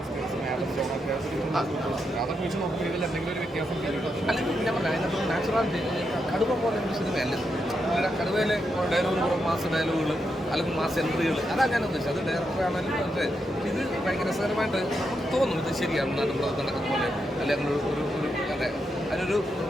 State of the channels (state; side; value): normal; both; correlation 0.83